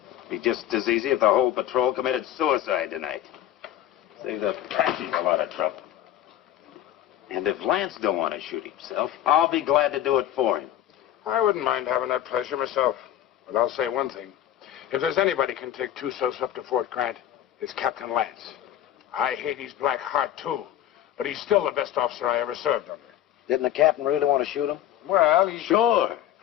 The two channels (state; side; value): quieter; right; 12.0 dB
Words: Be just as easy if the whole patrol committed suicide tonight. Save the Apaches a lot of trouble. And if Lance don't want to shoot himself, I'll be glad to do it for him. I wouldn't mind having that pleasure myself. But I'll say one thing. If there's anybody can take Tussos up to Fort Grant, it's Captain Lance. I hate his black heart, too. But he's still the best officer I ever served under. Didn't the captain really want to shoot him? Well, he... Sure.